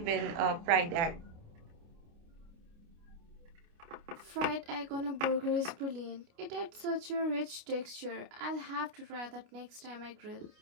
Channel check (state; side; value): late; left; 29 ms